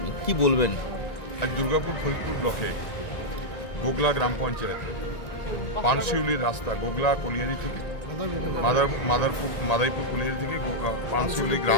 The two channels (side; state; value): right; late; 1.9 ms